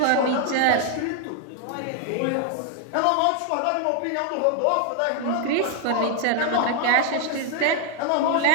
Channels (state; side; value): different; both; correlation 0.00